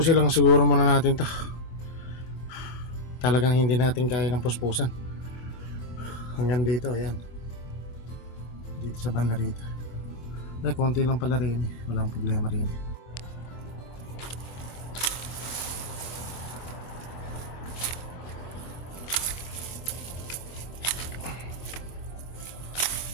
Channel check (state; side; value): late; right; 25 ms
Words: lang siguro muna natin to. Talagang hindi natin kaya ng puspusan. Hanggang dito, ayan. dito sa banda rito. Ay, konti lang pala rin eh. Walang problema rin.